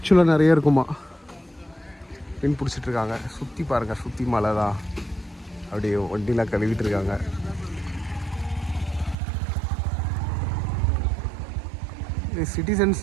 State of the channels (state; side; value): drops out; left; at 9.2 s